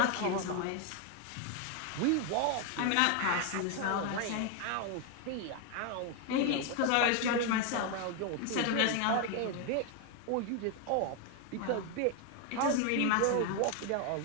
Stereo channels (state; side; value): different; both; correlation 0.01